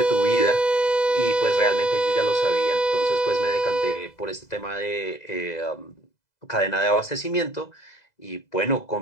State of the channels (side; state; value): right; late; 2.0 ms